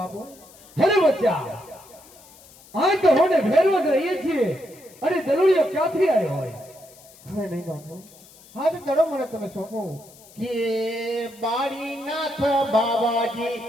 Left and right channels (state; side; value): noise; left; hiss, 24 dB below the sound